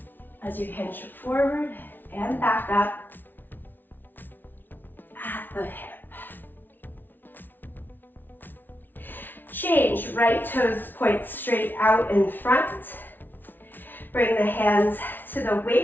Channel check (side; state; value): right; late; 0.091 ms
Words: as you hinge forward and back up at the hip. Change, right toes point straight out in front. Bring the hands to the